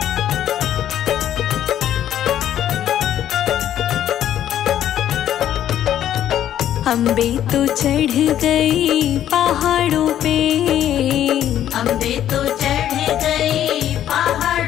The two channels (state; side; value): quieter; right; 11.2 dB